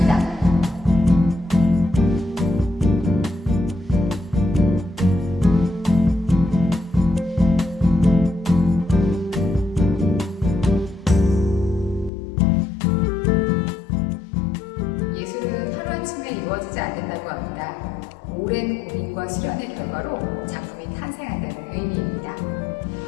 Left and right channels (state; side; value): drops out; right; at 12.1 s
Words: 예술은 하루아침에 이루어지지 않는다고 합니다. 오랜 고민과 실현의 결과로 작품이 탄생한다는 의미입니다.